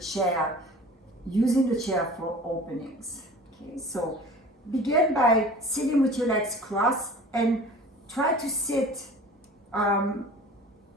using the chair for openings. Okay, so begin by sitting with your legs crossed and try to sit in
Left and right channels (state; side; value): normal; both; correlation 0.42